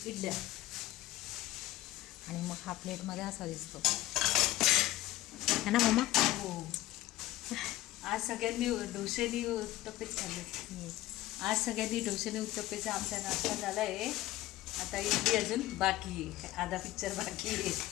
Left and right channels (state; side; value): quieter; right; 16.2 dB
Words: इडल्या. आणि मग हा प्लेटमध्ये असा दिसतो है ना मम्मा. हो, आज सगळ्यांनी डोसेनी उत्तप्पेच खाल्ले. आज सगळ्यांनी डोसेने उत्तप्पेचा आमचा नाश्ता झाला आहे. आता इडली अजून बाकी आहे, आधा पिक्चर बाकी आहे.